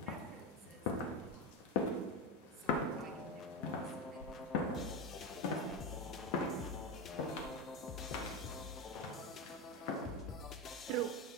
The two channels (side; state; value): both; normal; correlation 0.16